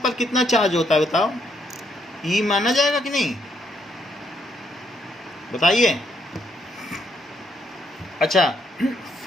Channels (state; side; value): normal; both; correlation 0.74